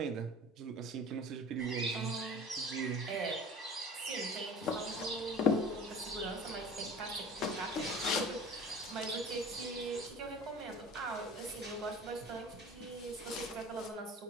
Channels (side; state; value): both; normal; correlation 0.41